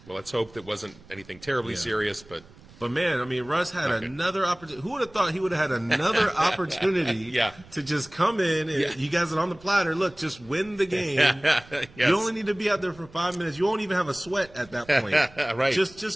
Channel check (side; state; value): right; noise; rumble, 23 dB below the sound